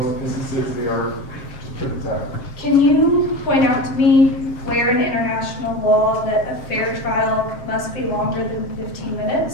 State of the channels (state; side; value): late; right; 7.4 ms